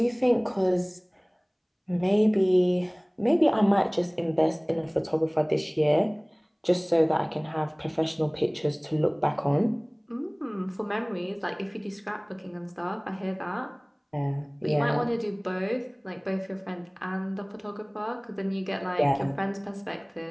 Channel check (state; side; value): identical; both; correlation 1.00